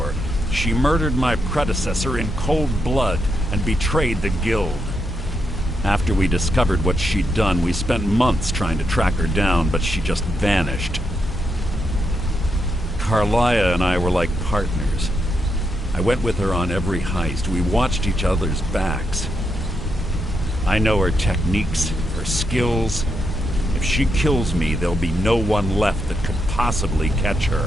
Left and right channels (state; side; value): normal; both; correlation 0.81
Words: She murdered my predecessor in cold blood and betrayed the guild. After we discovered what she'd done, we spent months trying to track her down, but she just vanished. Carlia and I were like partners. I went with her on every heist. We watched each other's backs. I know her techniques, her skills. If she kills me, there'll be no one left that could possibly catch her.